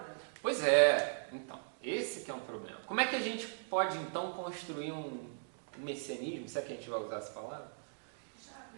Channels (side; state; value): left; silent; digital silence